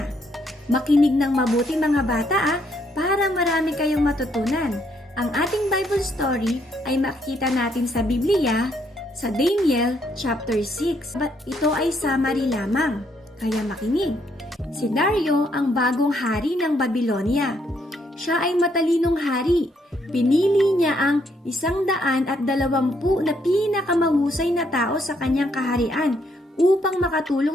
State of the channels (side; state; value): both; normal; correlation 0.72